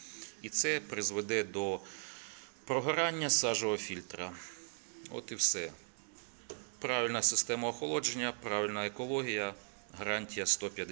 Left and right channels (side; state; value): left; silent; digital silence